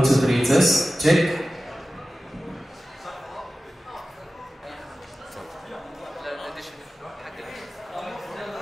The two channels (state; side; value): normal; both; correlation 0.95